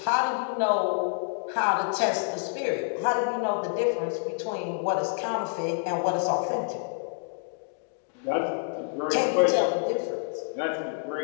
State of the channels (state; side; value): silent; right; 59 dB below the other